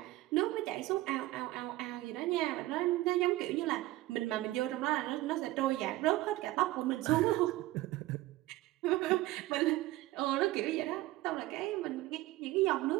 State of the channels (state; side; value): quieter; left; 17.5 dB